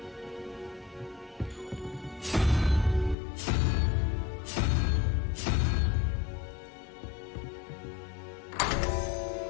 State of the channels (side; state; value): right; drops out; at 3.2 s